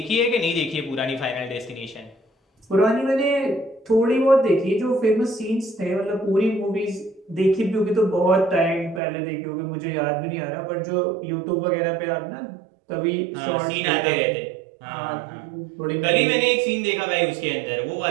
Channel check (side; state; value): left; drops out; at 9.0 s